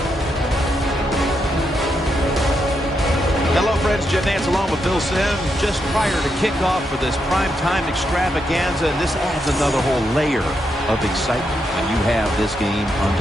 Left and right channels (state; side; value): normal; both; correlation 0.82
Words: Hello, friends. Jim Nantz along with Phil Simms just prior to kickoff for this primetime extravaganza, and this adds another whole layer of excitement when you have this game